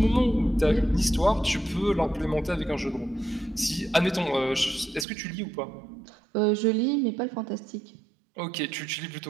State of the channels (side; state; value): left; drops out; at 5.1 s